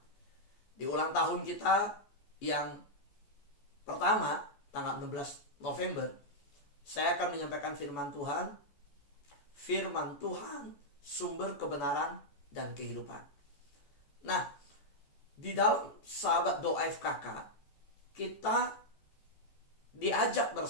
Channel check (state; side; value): late; right; 14 ms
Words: Di ulang tahun kita yang pertama, tanggal 16 November, saya akan menyampaikan firman Tuhan. Firman Tuhan, sumber kebenaran dan kehidupan. Nah, di dalam sahabat doa FKK, kita diajak